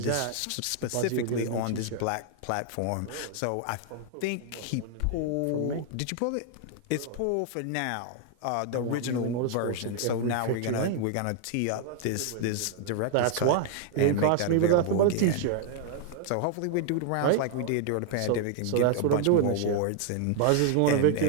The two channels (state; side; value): different; both; correlation 0.00